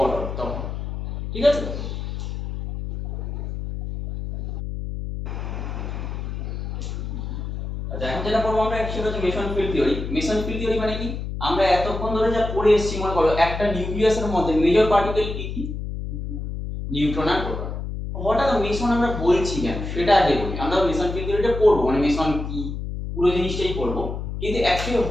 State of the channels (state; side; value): noise; left; hum, 5 dB below the sound